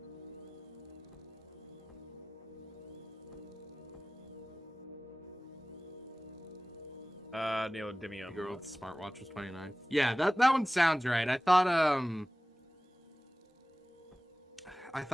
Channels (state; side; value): normal; both; correlation 0.97